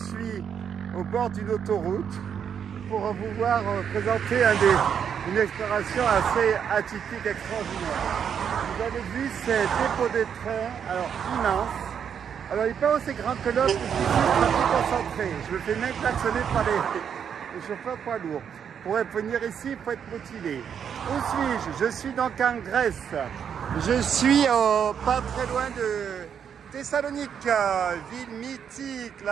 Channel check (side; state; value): left; quieter; 7.8 dB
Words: au bord d'une autoroute pour vous voir présenter une exploration assez atypique, extraordinaire. Vous avez vu ces dépôts de train, alors immense. Alors il n'est pas aussi grand que l'autre, je suis très concentré. Je me fais même klaxonner par les chauffeurs poids lourds. Pour venir ici, il faut être motivé. Où suis-je? Je suis donc en Grèce. Je suis pas très loin de Thessalonique, ville mythique,